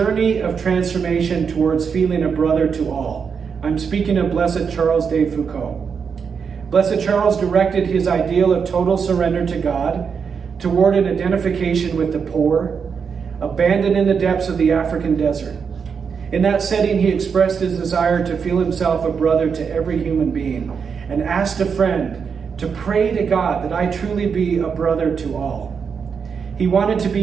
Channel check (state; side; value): quieter; left; 6.2 dB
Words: of transformation towards feeling a brother to all. I'm speaking of Blessed Charles de Foucauld. Blessed Charles directed his ideal of total surrender to God toward an identification with the poor, abandoned in the depths of the African desert. In that setting, he expressed his desire to feel himself a brother to every human being and asked a friend to pray to God that I truly be a brother to all. He wanted to